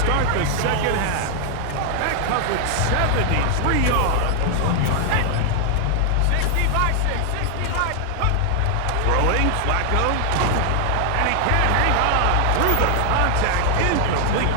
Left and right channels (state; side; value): different; both; correlation 0.00